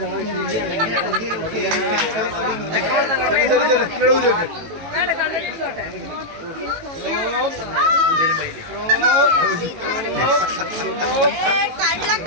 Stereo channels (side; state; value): left; late; 18 ms